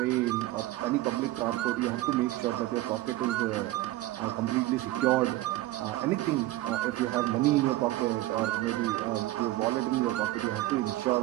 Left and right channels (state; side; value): quieter; left; 16.8 dB